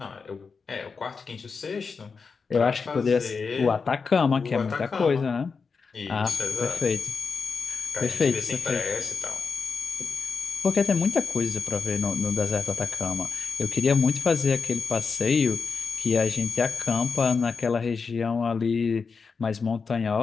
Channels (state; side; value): quieter; right; 5.1 dB